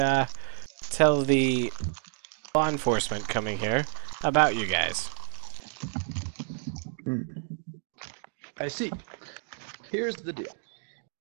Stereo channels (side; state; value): left; silent; digital silence